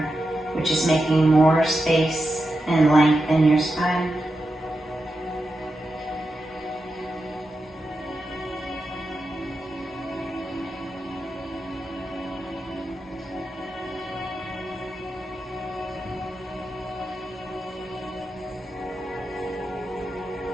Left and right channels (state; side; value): normal; both; correlation 0.89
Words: which is making more space and length in your spine.